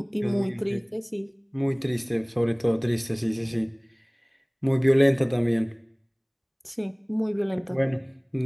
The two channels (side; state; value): both; identical; correlation 1.00